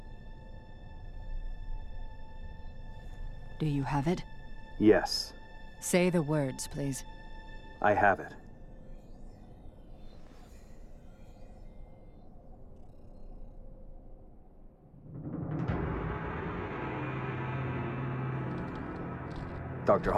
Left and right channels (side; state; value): both; identical; correlation 1.00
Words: Do you have it? Yes. Say the words, please. I have it. Dr.